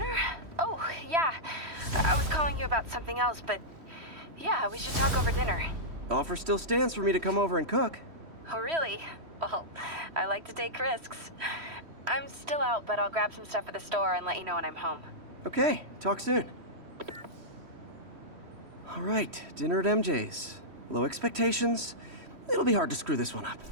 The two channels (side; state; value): left; late; 3.1 ms